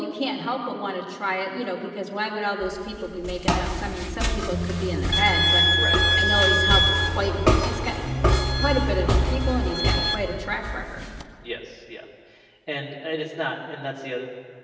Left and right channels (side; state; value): both; identical; correlation 1.00